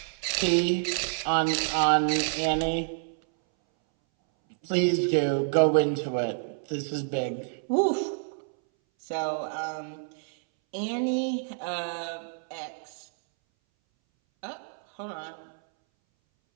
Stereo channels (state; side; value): silent; left; 59 dB below the other